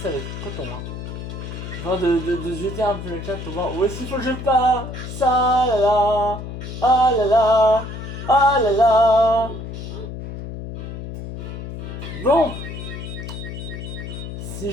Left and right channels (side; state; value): left; noise; hum, 8 dB below the sound